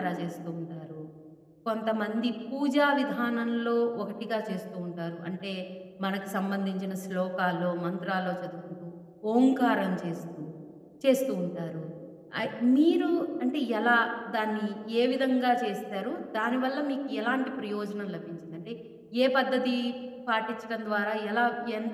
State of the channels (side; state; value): both; identical; correlation 1.00